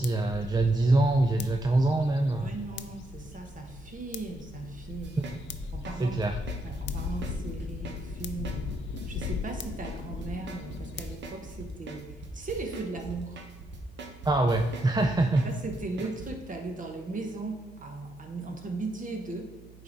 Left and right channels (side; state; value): right; noise; hum, 20 dB below the sound